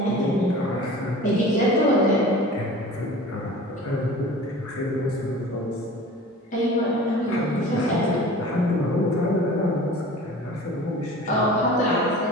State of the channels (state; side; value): normal; both; correlation 0.40